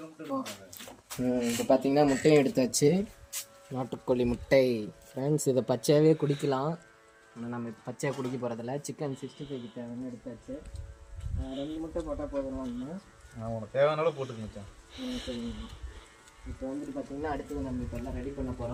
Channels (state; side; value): identical; both; correlation 1.00